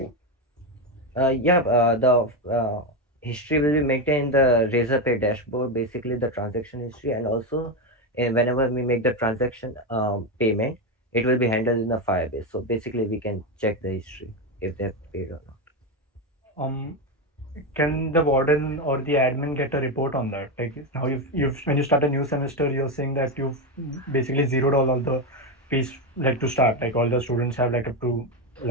yeah, the history will be maintained in the Razorpay dashboard, basically the transaction history, and also whenever we make the transaction payment, it will be handled in the Firebase. So basically, we can check the history if they have paid or not. Um, can the warden or the admin get a report on that? Like now, you've when you start a new semester, you're saying that you've basically zeroed all the fees like to start. Like all the students have like up to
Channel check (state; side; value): normal; both; correlation 0.11